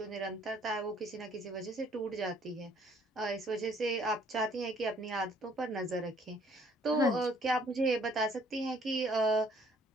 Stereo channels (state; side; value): normal; both; correlation 0.61